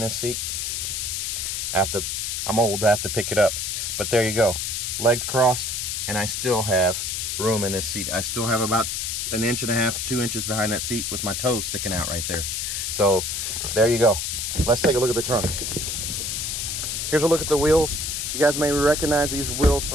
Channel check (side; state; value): left; noise; hiss, 2 dB below the sound